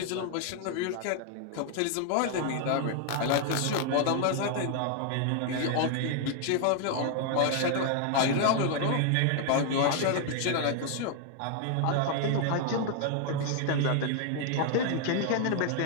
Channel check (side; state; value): both; different; correlation 0.00